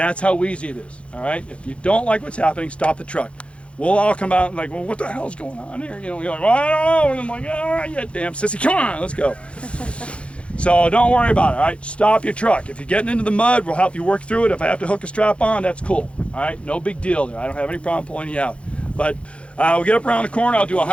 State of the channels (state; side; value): late; right; 0.060 ms